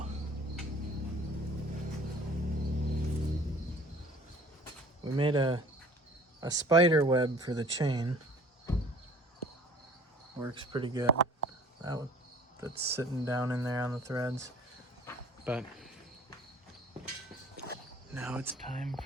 We made a spider web for the chain. Works pretty good. That's sitting down in there on the threads. But now it's time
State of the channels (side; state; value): both; normal; correlation 0.49